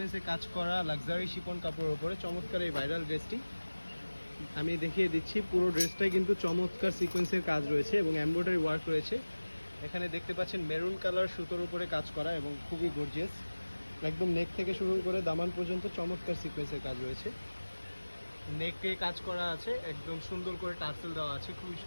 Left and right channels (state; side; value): inverted; both; correlation -1.00